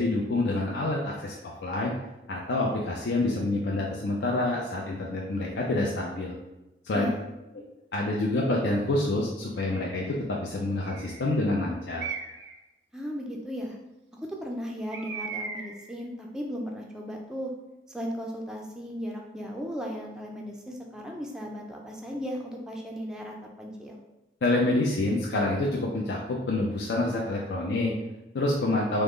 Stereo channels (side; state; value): both; normal; correlation 0.52